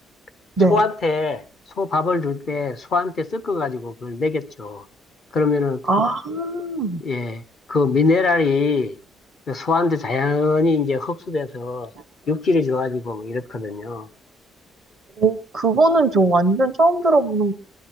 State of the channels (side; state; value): both; normal; correlation 0.65